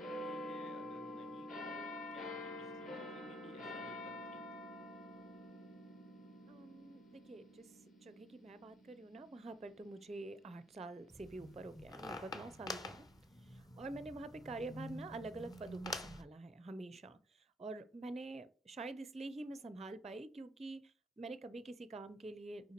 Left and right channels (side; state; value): both; normal; correlation 0.69